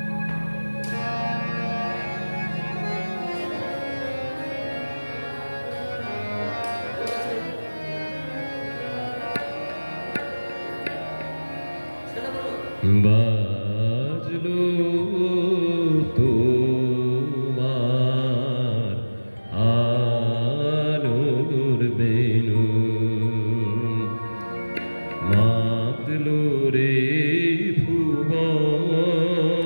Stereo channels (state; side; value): inverted; both; correlation -1.00